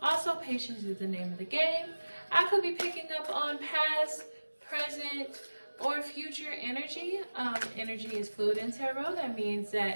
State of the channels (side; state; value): both; inverted; correlation -1.00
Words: Also, patience is the name of the game. I could be picking up on past, present, or future energy. Energy is fluid in tarot. That means